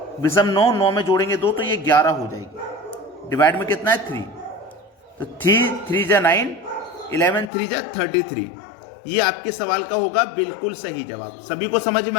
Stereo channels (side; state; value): right; drops out; at 7.5 s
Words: विषम 9 में जोड़ेंगे 2, तो ये 11 हो जाएगी। डिवाइड में कितना है 3, तो 3 जा 9, 11 3 जा 33। ये आपके सवाल का होगा बिल्कुल सही जवाब। सभी को समझ